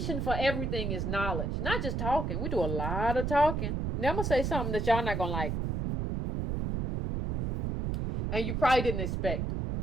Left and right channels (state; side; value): noise; right; rumble, 1 dB below the sound